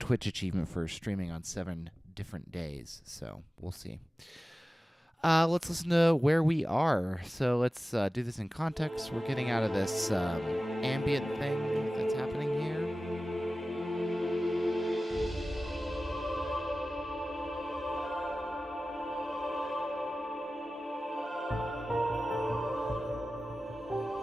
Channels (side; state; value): both; normal; correlation 0.96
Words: achievement for streaming on 7 different days, so we'll see. Let's listen to where we are. So let's do this in context. We're getting out of this ambient thing that's happening here.